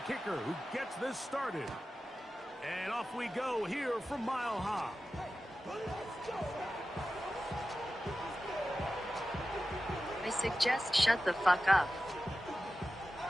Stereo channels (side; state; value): both; normal; correlation 0.94